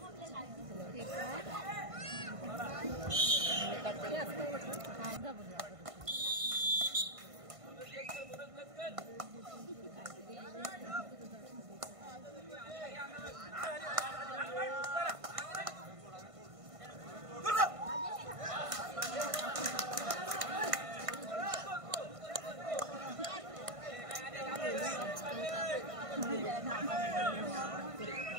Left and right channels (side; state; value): left; late; 1.5 ms